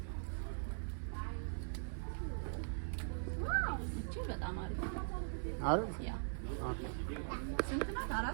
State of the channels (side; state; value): left; silent; digital silence